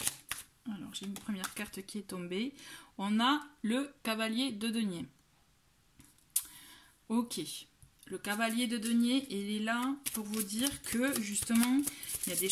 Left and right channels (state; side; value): identical; both; correlation 1.00